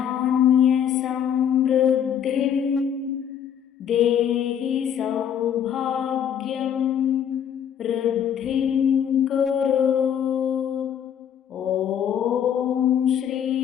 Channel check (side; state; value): right; quieter; 8.9 dB